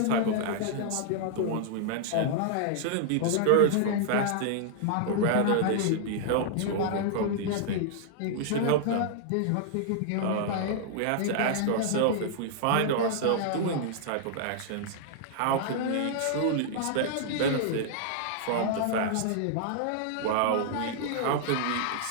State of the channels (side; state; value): both; different; correlation -0.01